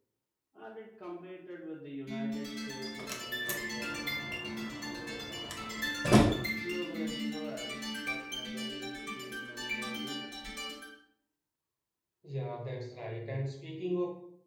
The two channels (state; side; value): identical; both; correlation 1.00